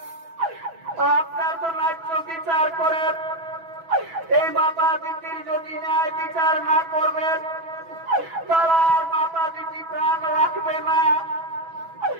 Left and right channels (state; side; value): late; left; 6.1 ms